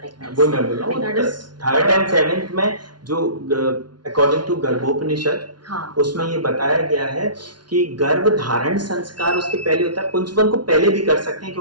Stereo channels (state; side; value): late; left; 0.70 ms